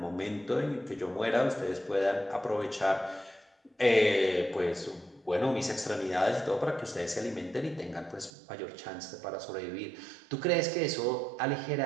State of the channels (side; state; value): left; drops out; at 8.3 s